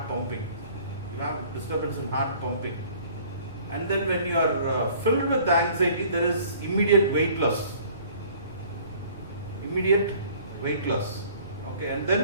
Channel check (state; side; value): inverted; both; correlation -0.53